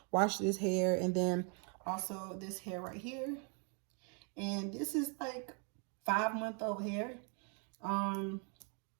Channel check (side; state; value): left; quieter; 38.9 dB